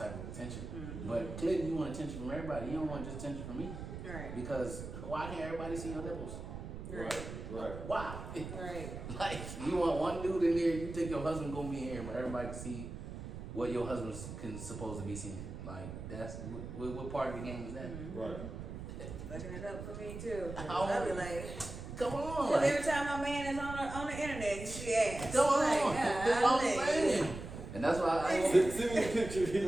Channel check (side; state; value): right; noise; rumble, 9 dB below the sound